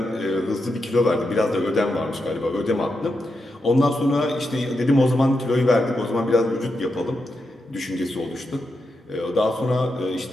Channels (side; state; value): both; normal; correlation 0.86